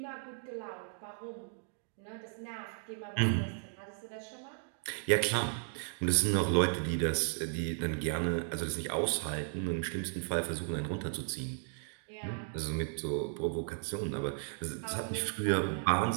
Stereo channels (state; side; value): silent; left; digital silence